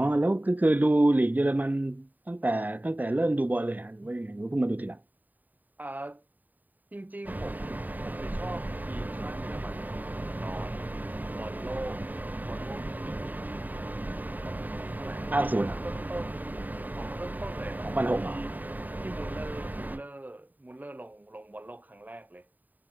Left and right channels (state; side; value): late; left; 0.085 ms